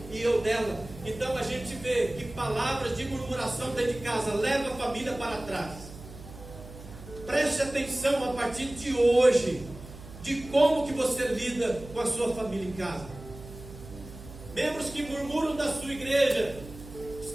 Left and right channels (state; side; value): noise; right; hum, 15 dB below the sound